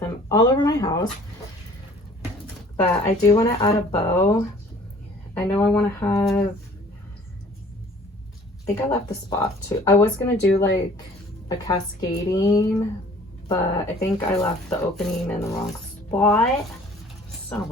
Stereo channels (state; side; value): normal; both; correlation 0.52